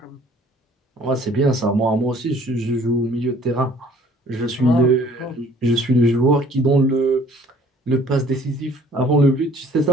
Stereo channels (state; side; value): normal; both; correlation 0.55